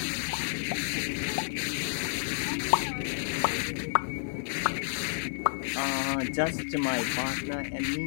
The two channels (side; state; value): right; silent; 58 dB below the other